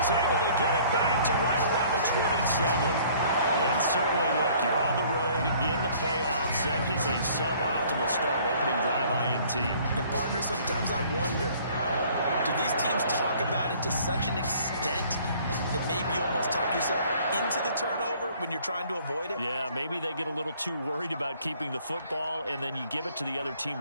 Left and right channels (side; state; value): both; inverted; correlation -0.56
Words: able to get it back to right around the 27. And certainly, look, you're on the road in the playoffs. That is a suboptimal start, opening drive INT. And, partner, sometimes I wonder, do these teams talk about it to such an extent that maybe you almost talk yourself into the turnover when you're trying to avoid it? Yeah, maybe they get a little too worried about keeping the football, and then you give it to the other team